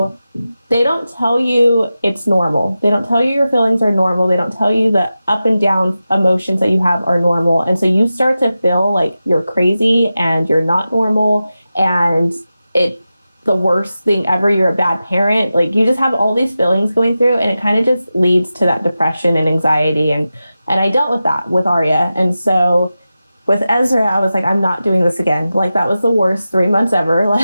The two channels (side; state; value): both; inverted; correlation -0.93